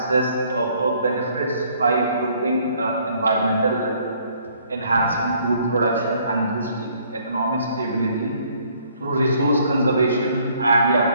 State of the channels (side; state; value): both; inverted; correlation -0.63